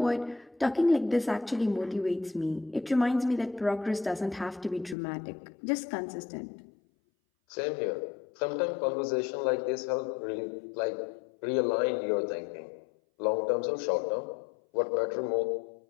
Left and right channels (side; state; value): right; drops out; at 5.0 s